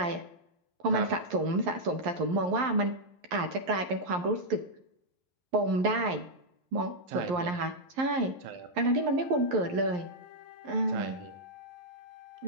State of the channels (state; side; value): late; left; 11 ms